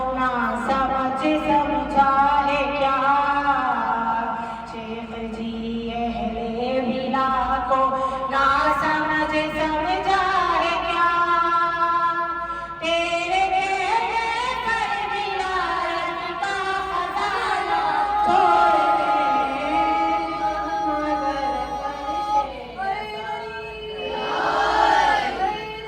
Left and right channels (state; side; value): identical; both; correlation 1.00